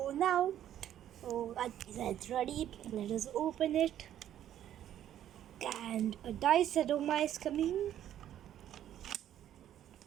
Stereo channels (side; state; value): left; quieter; 11.2 dB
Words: now our pizza is ready. Let us open it. And a nice aroma is coming.